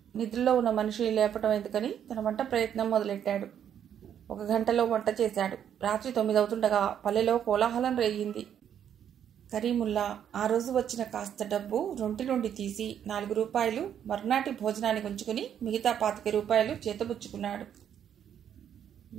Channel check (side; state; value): left; quieter; 9.3 dB